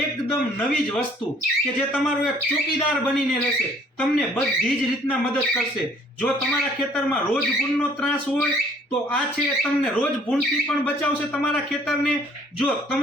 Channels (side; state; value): both; normal; correlation 0.58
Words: એકદમ નવી જ વસ્તુ કે જે તમારો એક ચોકીદાર બનીને રહેશે, તમને બધી જ રીતના મદદ કરશે। જો તમારા ખેતરમાં રોજ ભૂંડનો ત્રાસ હોય તો આ છે તમને રોજ ભૂંડથી પણ બચાવશે તમારા ખેતરને। જો